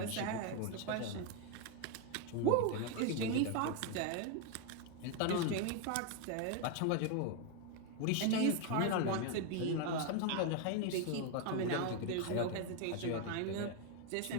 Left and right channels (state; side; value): different; both; correlation 0.01